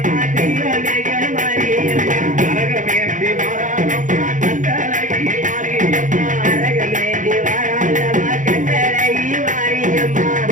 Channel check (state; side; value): late; left; 0.37 ms